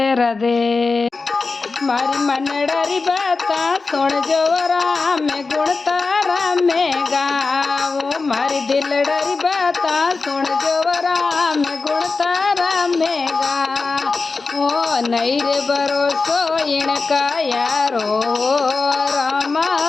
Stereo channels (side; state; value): right; quieter; 4.1 dB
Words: राधे। मारी मनडरी बाता सुन जो राम गुण तारा में गाओ। मारी दिलडरी बाता सुन जो राम गुण तारा में गाओ। नहीं रे भरोसो इनका यारो रामा